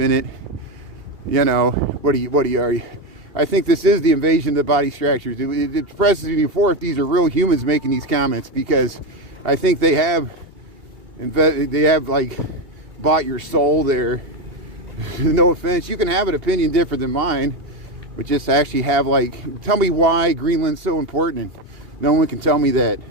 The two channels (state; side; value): late; left; 2.8 ms